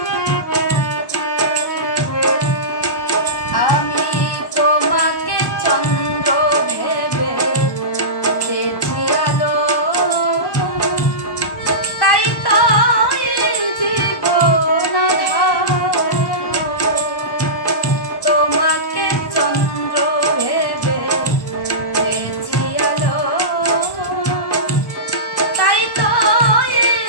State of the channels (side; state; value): right; late; 1.2 ms